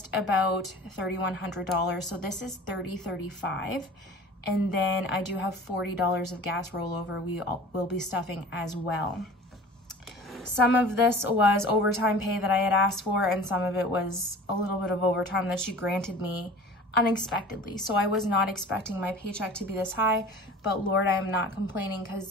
about $3,100. So this is $3,035. And then I do have $40 of gas rollover we will be stuffing as well. Some of this was overtime pay that I had asked for, and some of it was a little bit of overtime that she granted me unexpectedly. So I was not expecting my paycheck to be this high, but Lord, I am not complaining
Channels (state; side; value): normal; both; correlation 0.41